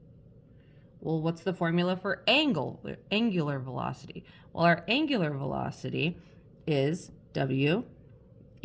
Well, what's the formula for angular velocity? Well, our angular velocity is W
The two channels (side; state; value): both; identical; correlation 1.00